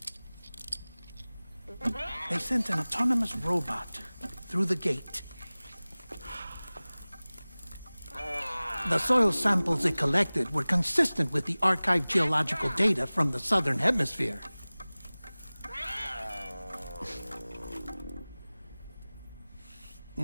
they sent an autonomous robot through the gate. The soil samples it collected were consistent with the archived geological data from the Southern Hemisphere.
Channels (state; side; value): inverted; both; correlation -0.99